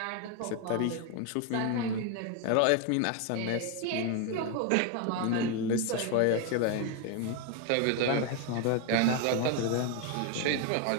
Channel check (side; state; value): both; different; correlation 0.01